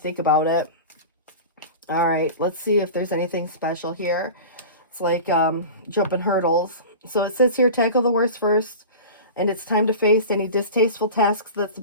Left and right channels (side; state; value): both; inverted; correlation -0.33